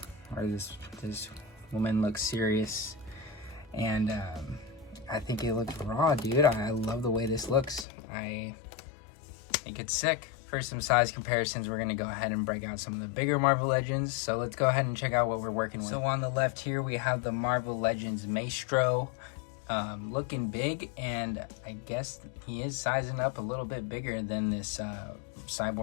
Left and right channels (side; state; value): right; drops out; at 7.9 s